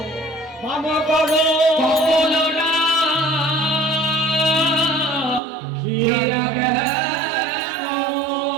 বাবা করো বলো না খিরা গেল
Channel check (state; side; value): drops out; left; at 5.4 s